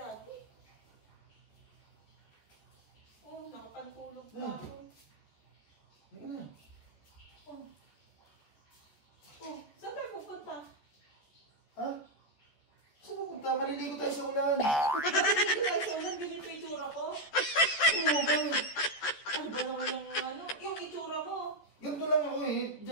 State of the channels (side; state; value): right; late; 13 ms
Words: Oh, nakapantulog pa Na. ako. Hindi na. Oh, saan tayo pupunta? Ha? Saan pupunta? Maliligo tayo sa ulan. Hindi tayo sa ulan, ganito yung itsura ko. Ano ba? Ano ba naman yung itsura mo? Ganito lang ako eh.